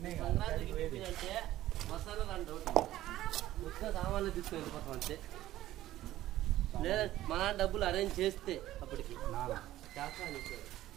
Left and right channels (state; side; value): quieter; left; 14.5 dB